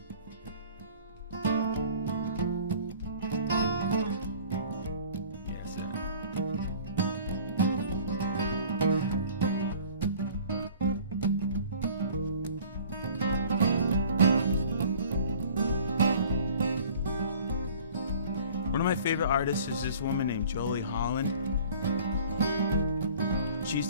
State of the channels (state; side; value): inverted; both; correlation -0.49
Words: Favorite artist is this woman named Jolie Holland. She